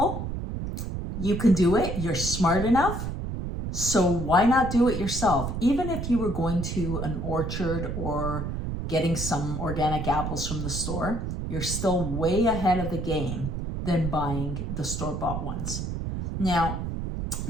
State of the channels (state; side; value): noise; right; rumble, 4 dB below the sound